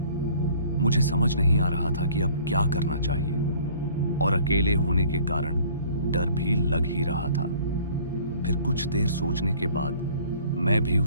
मुझे समझ नहीं आ रहा था कि अब क्या करना चाहिए और अकेले होने के कारण डर भी लग ही रहा था। फिर कुछ देर सोचने के बाद मैं भी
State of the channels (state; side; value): inverted; both; correlation -0.53